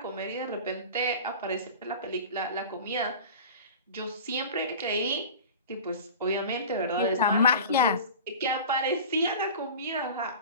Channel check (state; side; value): inverted; both; correlation -0.36